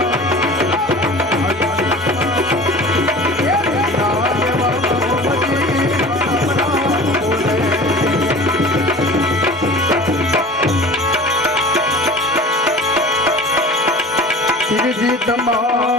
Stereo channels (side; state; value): both; normal; correlation 0.40